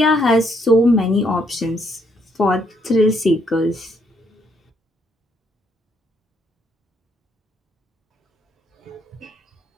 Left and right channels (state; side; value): normal; both; correlation 0.72